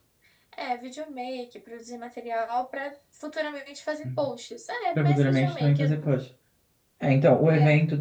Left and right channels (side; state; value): both; identical; correlation 1.00